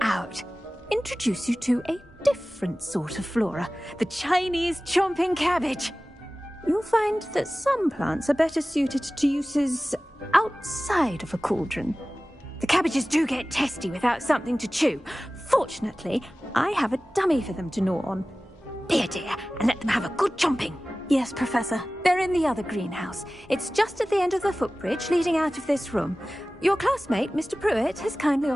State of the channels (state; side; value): normal; both; correlation 0.97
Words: Introduce you to a different sort of flora, the Chinese chomping cabbage. You'll find that some plants are better suited to uses outside of a cauldron. The cabbages do get testy without something to chew. Fortunately, I have a dummy for them to gnaw on. Be a dear and let them have a good chomping. Yes, Professor. They're in the other greenhouse. It's just at the end of the footbridge leading out of this room. Your classmate, Mr. Pruitt, has kindly